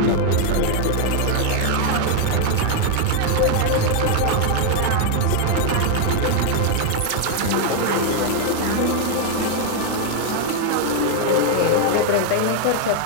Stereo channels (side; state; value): both; different; correlation 0.00